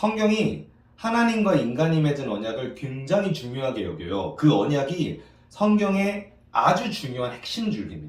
하나님과 인간이 맺은 언약을 굉장히 중요하게 여겨요. 그 언약이 성경의 아주 중요한 핵심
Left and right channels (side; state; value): both; identical; correlation 1.00